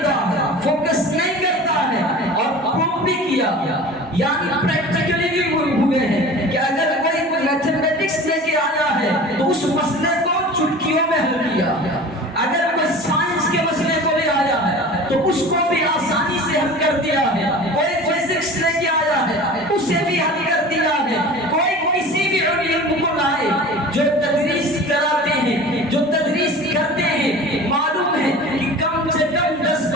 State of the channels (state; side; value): normal; both; correlation 0.39